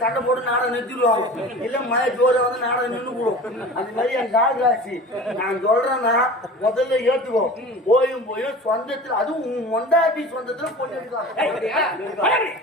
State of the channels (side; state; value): both; normal; correlation 0.38